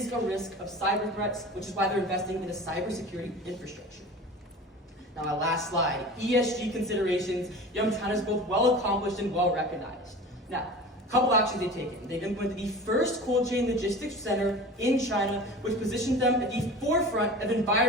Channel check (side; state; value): both; normal; correlation 0.36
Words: a risk of cyber threats, which is why they're investing in a cybersecurity infrastructure. Now, my last slide, ESG considerations. Yum China is both well accomplished and well recognized. Now, a couple actions they've taken. They've implemented the first cold chain logistics center in China, which positions them at the forefront of